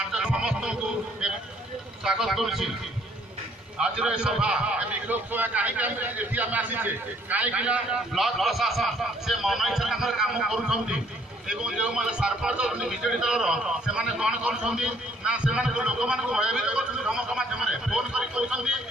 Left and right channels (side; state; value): both; normal; correlation 0.63